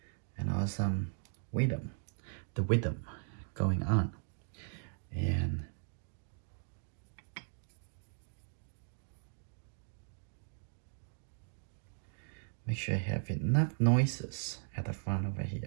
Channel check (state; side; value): silent; left; digital silence